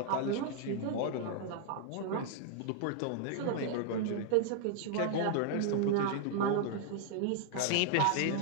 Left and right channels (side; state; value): both; different; correlation -0.01